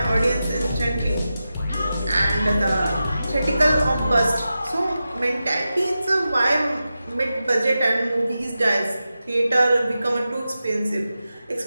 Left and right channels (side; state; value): both; inverted; correlation -0.92